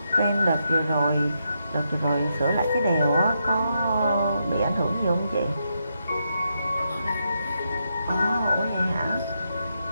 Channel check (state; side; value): inverted; both; correlation -0.82